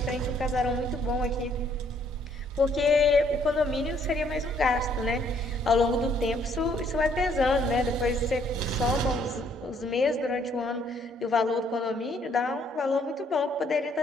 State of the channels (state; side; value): normal; both; correlation 0.66